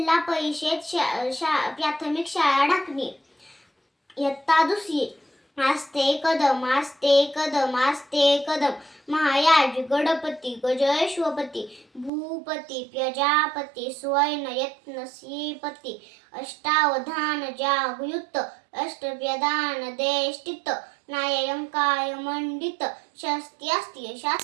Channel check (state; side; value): drops out; left; at 12.1 s